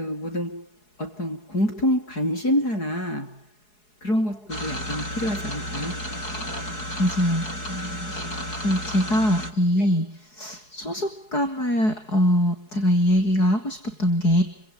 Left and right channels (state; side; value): late; right; 4.7 ms